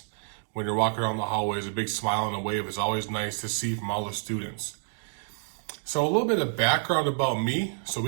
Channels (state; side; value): silent; left; digital silence